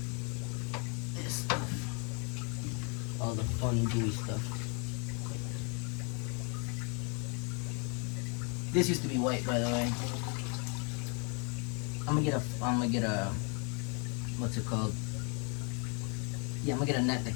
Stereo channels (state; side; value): quieter; right; 35.7 dB